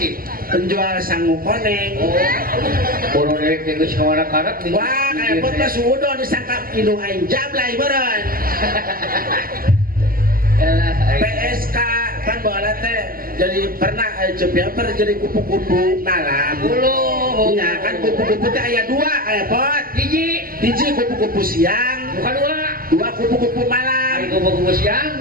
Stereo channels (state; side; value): late; left; 0.42 ms